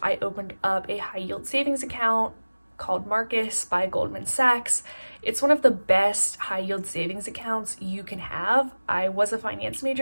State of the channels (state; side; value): inverted; both; correlation -1.00